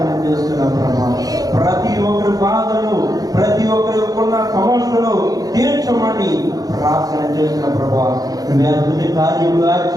చేస్తున్నాం ప్రభా. ప్రతి ఒక్కరి బాధలను, ప్రతి ఒక్కరి ఉన్న సమస్యలను తీర్చమని ప్రార్థన చేస్తున్న ప్రభా. నువ్వు అద్భుత కార్యములు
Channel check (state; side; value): late; left; 0.18 ms